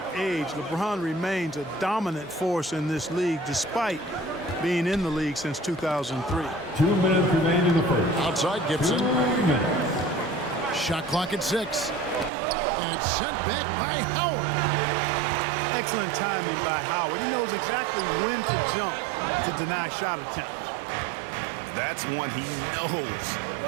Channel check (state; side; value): drops out; left; at 12.3 s